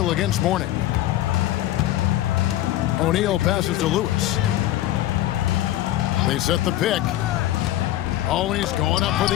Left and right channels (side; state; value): right; quieter; 14.3 dB